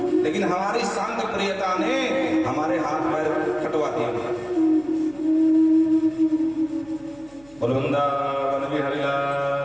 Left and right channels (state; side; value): noise; right; hum, 27 dB below the sound